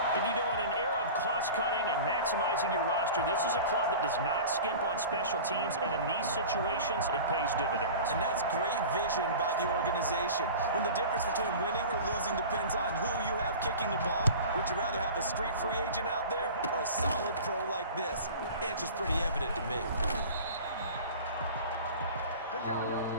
And you know, in an era of cost-cutting and maximizing your roster, this is a club that does not skimp on special teams, and in these situations, it pays dividends. And that's great vision by the organization. When the difference between winning or losing depends on who you have kicking the ball, would you rather have a street free agent out there or a solid pro like this? Answer's pretty evident to me.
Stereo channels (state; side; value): inverted; both; correlation -0.37